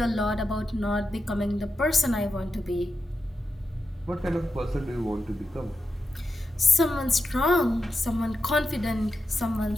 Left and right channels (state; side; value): normal; both; correlation 0.88